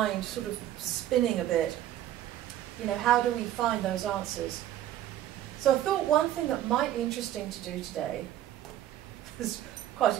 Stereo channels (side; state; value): left; quieter; 12.4 dB